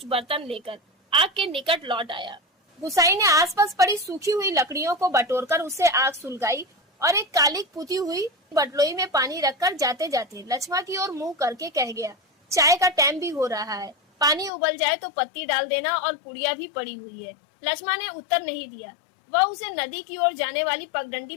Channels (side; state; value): right; drops out; at 14.5 s